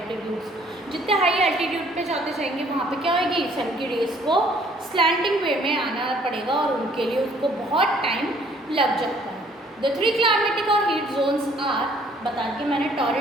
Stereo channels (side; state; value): both; normal; correlation 0.60